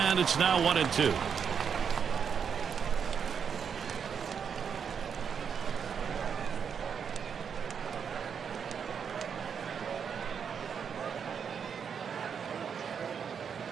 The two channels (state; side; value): quieter; left; 7.0 dB